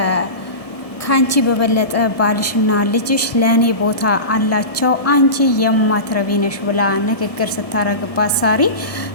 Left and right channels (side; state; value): right; late; 1.7 ms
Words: ከአንቺ በበለጠ ባልሽና ልጅሽ ለእኔ ቦታ አላቸው፣ አንቺ የማትረቢ ነሽ ብላ ንግግር ስታረግባት ሳሪ